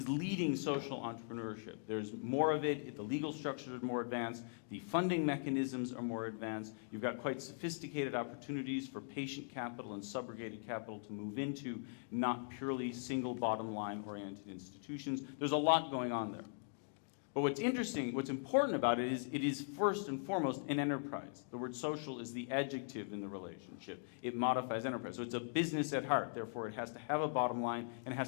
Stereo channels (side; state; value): right; silent; digital silence